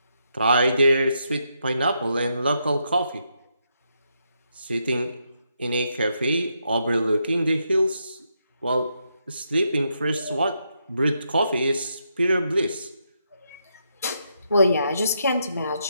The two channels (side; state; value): both; inverted; correlation -0.80